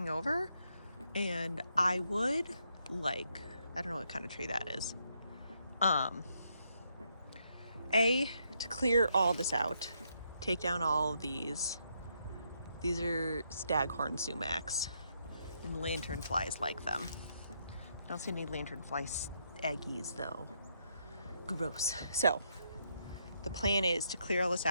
over. And I would like, I don't know what kind of tree that is. To clear all this out, take down all of these. These are staghorn sumacs, and lanternflies like them. I don't see any lanternfly eggies though. Gross. So the plan is to clear all this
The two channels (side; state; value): both; inverted; correlation -0.76